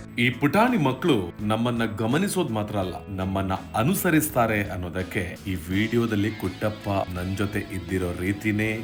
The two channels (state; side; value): identical; both; correlation 1.00